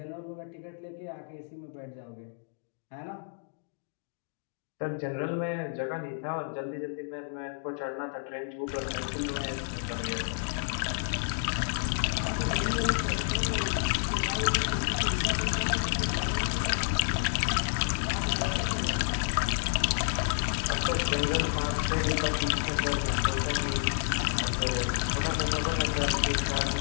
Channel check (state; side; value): silent; right; digital silence